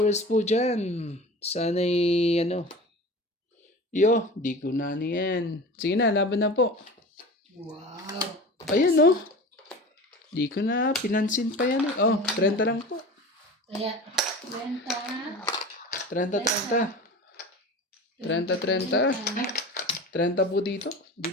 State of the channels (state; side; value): normal; both; correlation 0.35